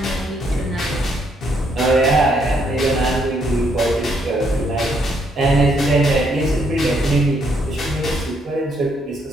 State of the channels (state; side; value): normal; both; correlation 0.72